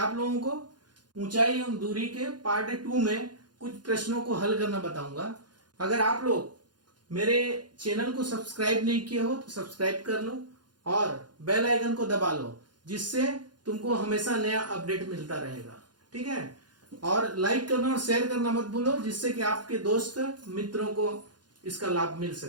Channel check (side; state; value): left; late; 0.70 ms